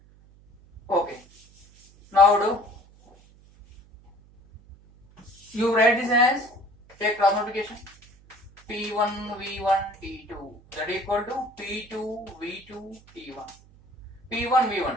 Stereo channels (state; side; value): noise; right; hum, 26 dB below the sound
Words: Okay. Now do you write this as, take cross multiplication, P1 V1 T2 that equal to P2 V2 T1. P1